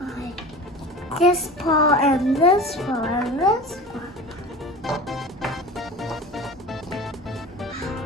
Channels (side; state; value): both; normal; correlation 0.35